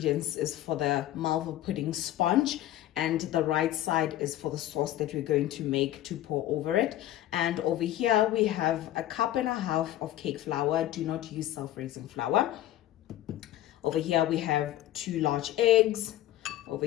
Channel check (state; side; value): quieter; right; 13.7 dB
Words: is for the Malva pudding sponge, and the right side is for the sauce that we're going to make to pour over it. And over here, we have 1.5 cups of cake flour. Do not use self-raising flour. Over here, we have 2 large eggs. Over